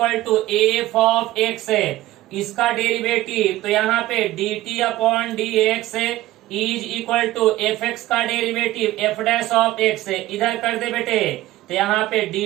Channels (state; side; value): quieter; left; 16.0 dB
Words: to F of X है, इसका डेरिवेटिव तो यहाँ पे dt अपॉन डी एक्स है is equal to F X का derivative F dash of X है। इधर कर दे बेटे, तो यहाँ पे